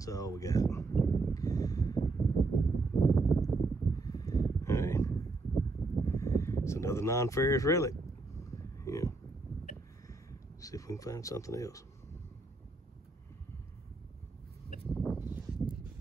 all we got. All right. It's another non-ferrous relic. Yeah. See if we can find something else.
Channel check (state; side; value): quieter; left; 3.4 dB